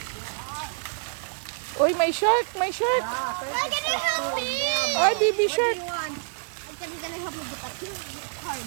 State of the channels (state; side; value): silent; left; digital silence